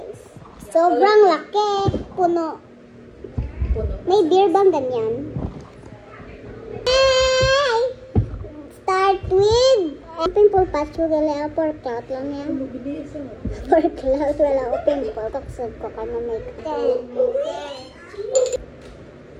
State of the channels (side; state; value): both; identical; correlation 1.00